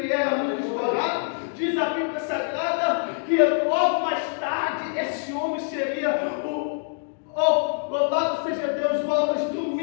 era muito escorado, diz a Bíblia Sagrada que logo mais tarde esse homem seria louvado seja Deus, o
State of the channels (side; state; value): right; silent; digital silence